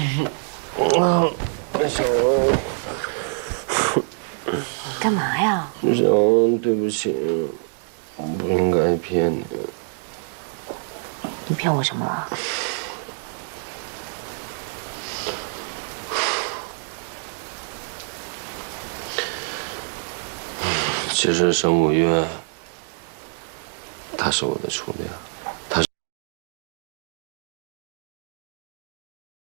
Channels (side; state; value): left; silent; 62 dB below the other